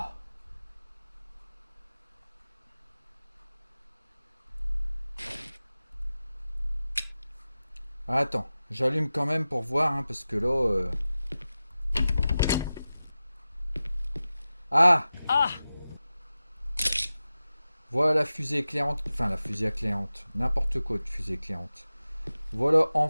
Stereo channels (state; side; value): inverted; both; correlation -0.94